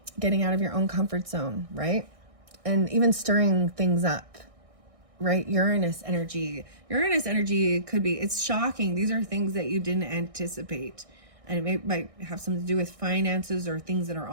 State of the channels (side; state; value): left; late; 1.6 ms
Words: Getting out of your own comfort zone, right? And even stirring things up. Right? Uranus energy could be, it's shocking. These are things that you didn't anticipate, and it might have something to do with finances or things that are